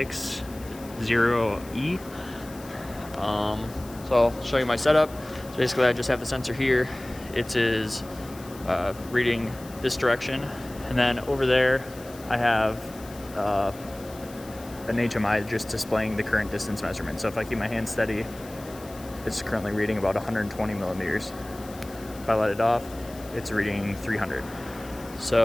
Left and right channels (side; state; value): left; noise; hiss, 20 dB below the sound